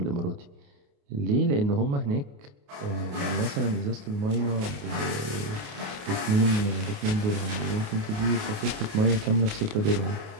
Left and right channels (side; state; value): left; late; 28 ms